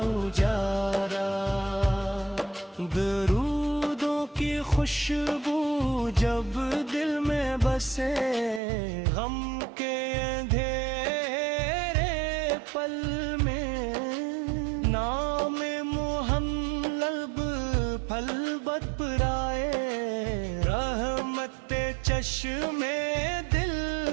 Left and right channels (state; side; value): drops out; left; at 8.6 s